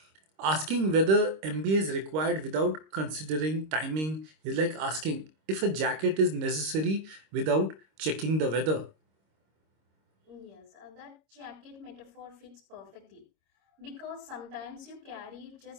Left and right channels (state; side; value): late; left; 26 ms